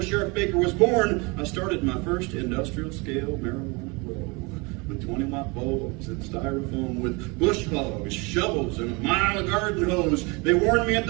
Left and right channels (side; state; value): left; quieter; 27.9 dB